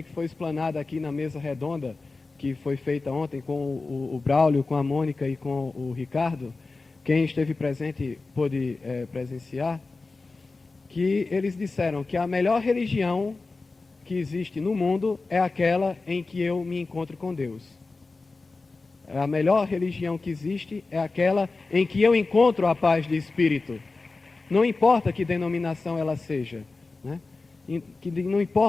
que foi explanada aqui na mesa redonda, que foi feita ontem com o Braulio, com a Mônica e com o Ricardo. Quem esteve presente pôde presenciar, que eles disseram que a melhor religião que existe no mundo é aquela em que eu me encontro com Deus. A melhor religião que existe é aquela em que eu encontro a paz de espírito. Não importa que denominação ela seja, né? Não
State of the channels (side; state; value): right; quieter; 3.7 dB